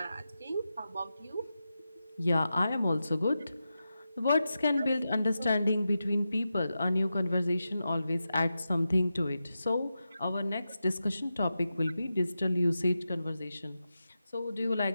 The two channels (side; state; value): both; inverted; correlation -0.91